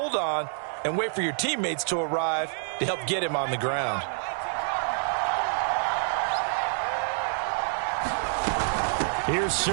on and wait for your teammates to arrive to help get him on the ground. Here's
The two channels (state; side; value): silent; left; digital silence